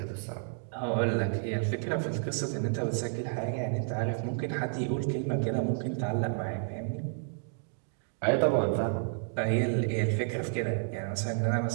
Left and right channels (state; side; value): silent; left; digital silence